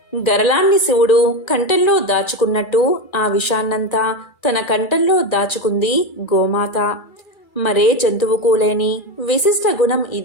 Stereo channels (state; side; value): late; right; 2.3 ms